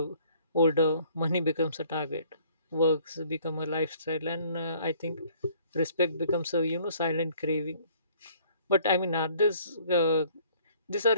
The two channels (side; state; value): both; inverted; correlation -0.58